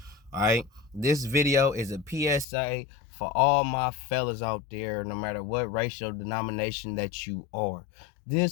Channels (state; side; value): drops out; right; at 2.5 s